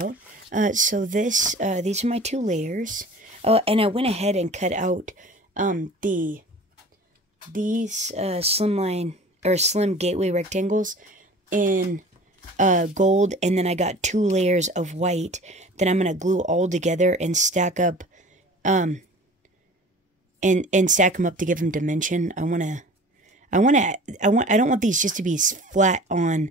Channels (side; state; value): both; normal; correlation 0.43